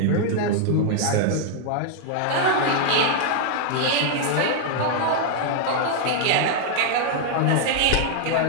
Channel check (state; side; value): different; both; correlation 0.00